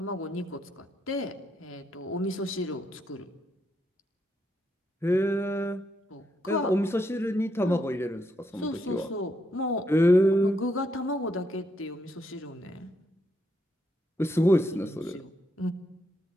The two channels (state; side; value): normal; both; correlation 0.78